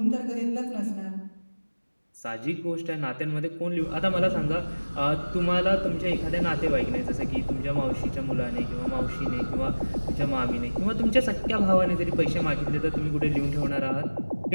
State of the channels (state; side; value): inverted; both; correlation -1.00